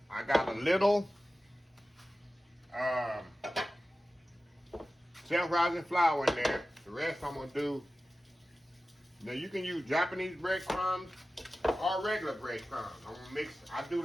I got a little self-rising flour in there. The rest I'm going to do, now you can use Japanese breadcrumbs or regular breadcrumbs. I'm going to mix, I do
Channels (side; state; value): both; normal; correlation 0.95